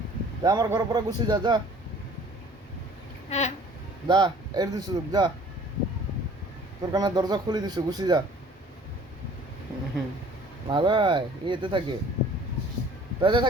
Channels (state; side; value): normal; both; correlation 0.51